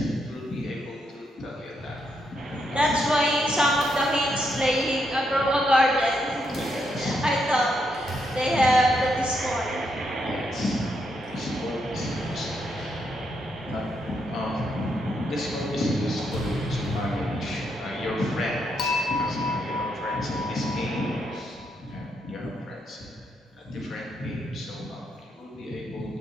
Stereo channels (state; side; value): normal; both; correlation 0.79